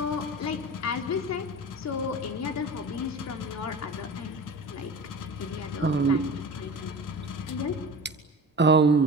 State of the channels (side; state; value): both; normal; correlation 0.35